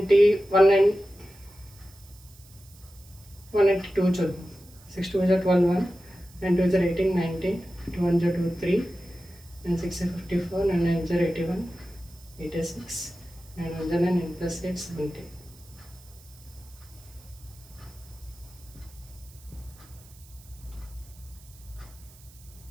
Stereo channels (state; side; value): noise; right; hiss, 24 dB below the sound